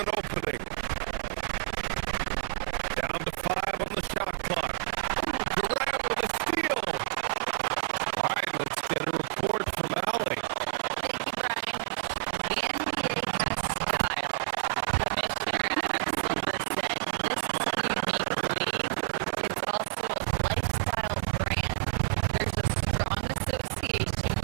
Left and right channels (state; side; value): silent; left; digital silence